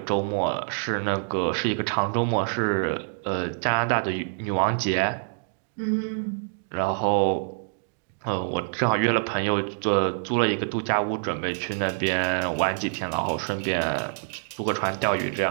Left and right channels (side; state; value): left; silent; digital silence